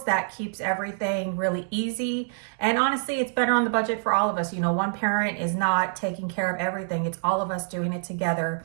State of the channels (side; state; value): left; silent; 61 dB below the other